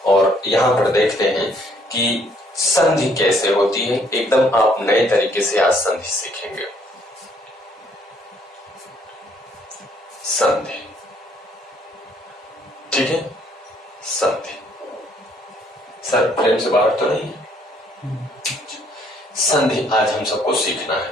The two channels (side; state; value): both; normal; correlation 0.65